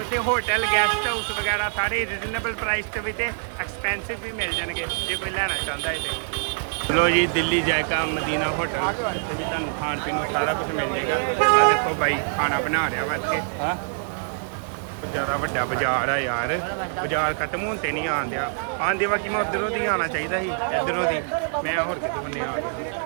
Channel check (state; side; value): silent; left; digital silence